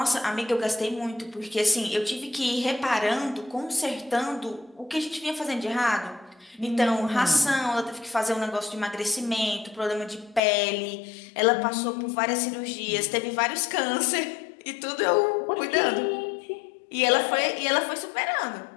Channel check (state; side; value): drops out; right; at 10.4 s